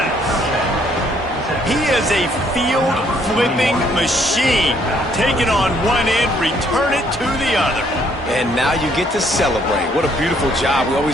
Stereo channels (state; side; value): normal; both; correlation 0.67